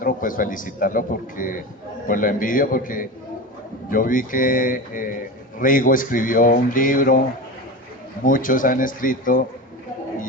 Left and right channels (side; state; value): both; normal; correlation 0.26